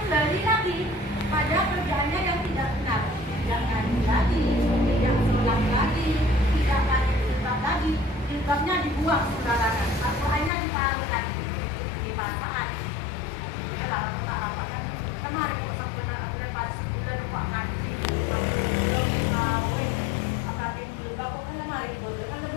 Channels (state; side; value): drops out; right; at 10.5 s